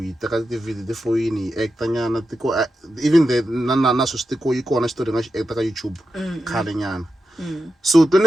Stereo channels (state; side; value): normal; both; correlation 0.89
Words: teka ti-video ti foyini hi acta nyana tiko even the na swi tiko yi kona xitori nga xi acta ka YouTube khale nyana. So